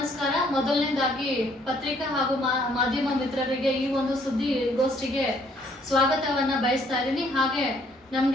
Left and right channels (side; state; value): both; normal; correlation 0.65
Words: ಮೊದಲನೇದಾಗಿ ಪತ್ರಿಕಾ ಹಾಗೂ ಮಾಧ್ಯಮ ಮಿತ್ರರಿಗೆ ಈ ಒಂದು ಸುದ್ದಿಗೋಷ್ಠಿಗೆ ಸ್ವಾಗತವನ್ನ ಬಯಸ್ತಾ ಇದ್ದೀನಿ. ಹಾಗೆ